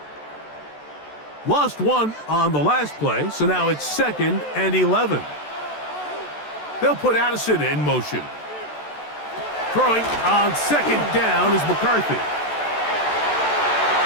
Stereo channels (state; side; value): late; right; 14 ms